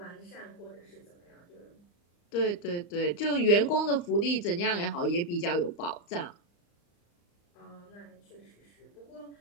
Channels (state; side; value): late; right; 35 ms